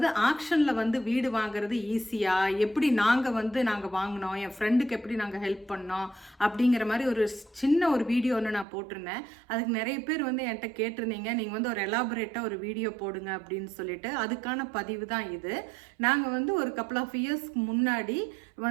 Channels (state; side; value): drops out; left; at 8.7 s